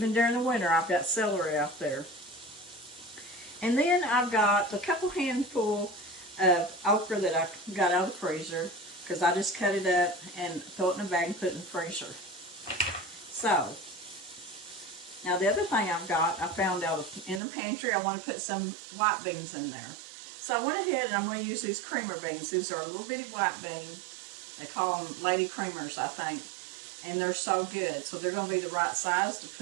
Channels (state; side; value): drops out; left; at 17.4 s